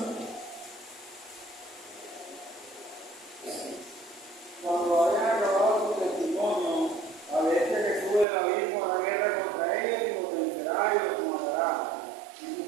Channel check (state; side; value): drops out; left; at 8.2 s